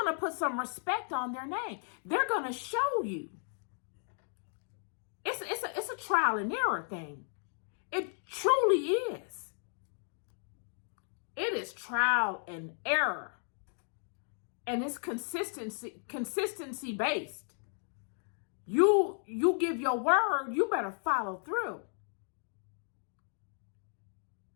to put some respect on their name. They're going to show you. It's a trial and error thing. It truly is. It is trial and error. And it's consistency based. You give your word, you better follow through.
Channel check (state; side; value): silent; right; 55 dB below the other